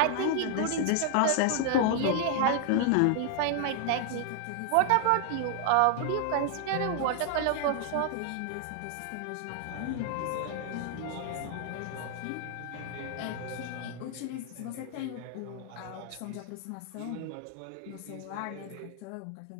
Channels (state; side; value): different; both; correlation 0.00